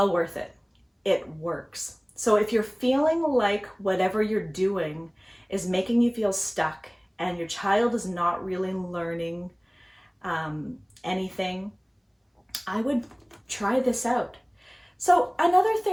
worth it. It works. So if you're feeling like whatever you're doing is making you feel stuck and your child is not really learning anything, I would try this out. So another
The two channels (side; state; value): both; identical; correlation 1.00